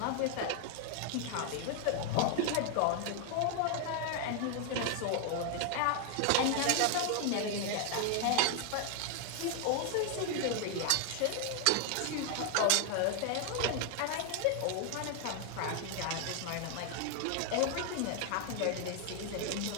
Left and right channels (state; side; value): different; both; correlation 0.00